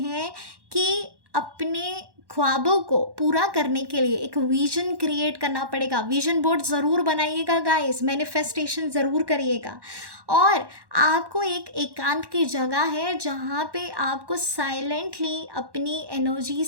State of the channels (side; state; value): left; late; 1.1 ms